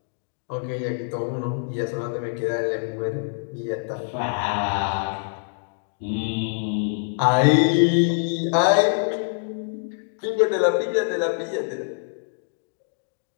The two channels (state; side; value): silent; right; digital silence